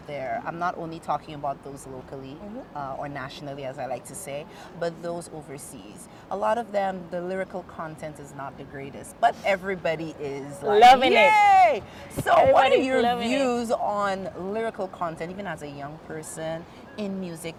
there? I'm not only talking about those locally or nationally, as I like to say, but those overseas. A lot of them, the lyrical content is not the greatest, but everybody is like, Loving it. yay! So, what are Everybody's your loving it. views on lyrical content, even as a young person in music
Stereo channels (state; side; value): identical; both; correlation 1.00